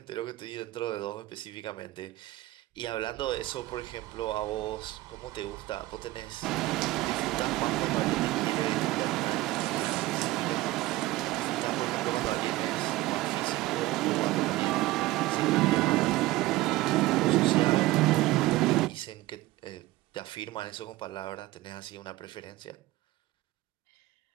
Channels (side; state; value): left; quieter; 18.0 dB